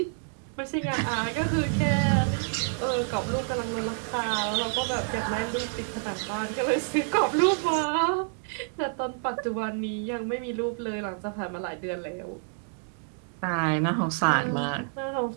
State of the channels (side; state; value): left; silent; 59 dB below the other